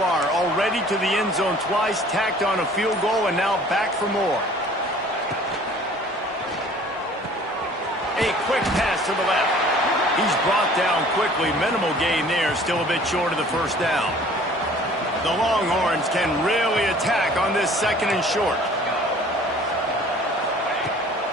Already to the end zone twice, tacked on a field goal, and now back for more. A quick pass to the left. He's brought down quickly. Minimal gain there, still a bit short of the 1st down. The Longhorns can really attack on this 2nd and short.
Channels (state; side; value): normal; both; correlation 0.51